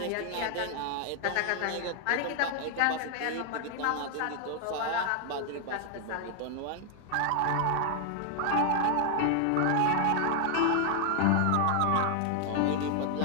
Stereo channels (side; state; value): both; different; correlation 0.00